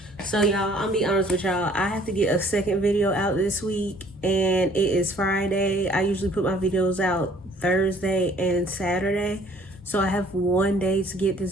So y'all, I'm be honest with y'all, I have to get a second video out this week, and it is Friday. I usually put my videos out Thursday and Saturday, so I have one day to get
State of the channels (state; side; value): normal; both; correlation 0.57